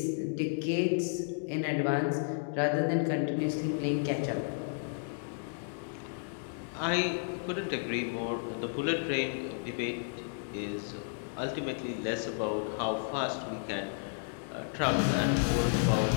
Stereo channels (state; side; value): silent; right; digital silence